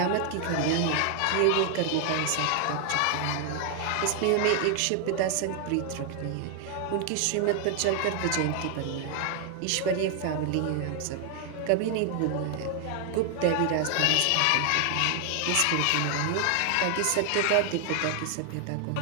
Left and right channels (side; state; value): both; different; correlation 0.00